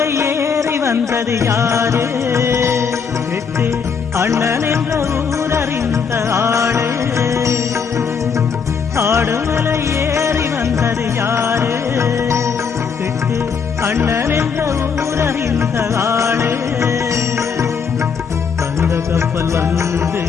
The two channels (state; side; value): quieter; right; 6.1 dB